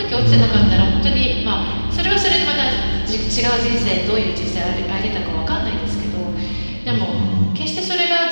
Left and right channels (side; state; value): both; inverted; correlation -1.00